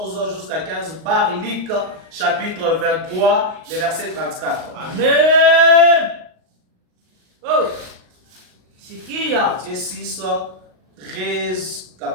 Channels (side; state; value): left; late; 38 ms